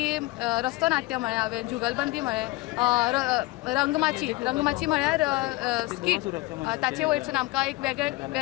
रस्तो नाट्य म्हळें हांवें, जुगलबंदी म्हळें, रंगमाची म्हळ्यार स्कीट, ताचे वयरसून आमकां एक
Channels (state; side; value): quieter; right; 20.6 dB